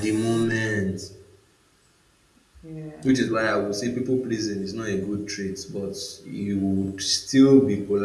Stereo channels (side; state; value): both; identical; correlation 1.00